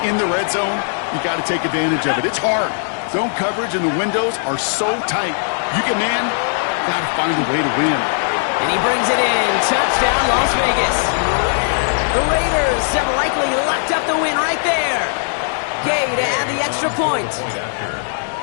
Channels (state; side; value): silent; right; digital silence